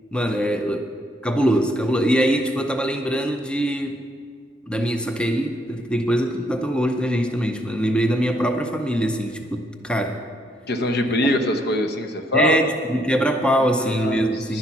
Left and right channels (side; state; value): both; normal; correlation 0.72